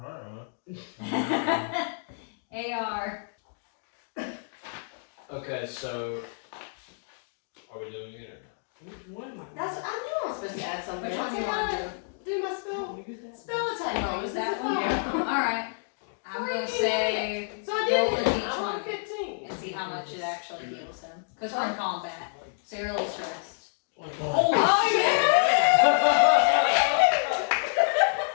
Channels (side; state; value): right; silent; digital silence